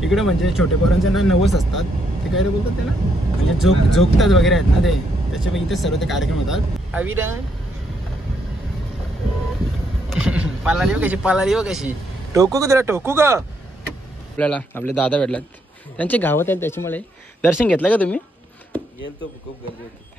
इकडे म्हणजे छोटे पोरांचे ना नवस असतात, ते काय बोलतात त्याला, म्हणजे झोपतात वगैरे आहेत ना ते, त्याच्यामुळे इथे सर्व ते कार्यक्रम होतात. अविरा पालाली हो कशी टोकू का तुला, टोकू का. आपल्याला आपले दादा भेटलात, त्यांचे गावात आहेत, त्याच्यामुळे दर्शन घेतलं का तुम्ही. गेलतो, खूप गर्दी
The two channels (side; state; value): both; normal; correlation 0.75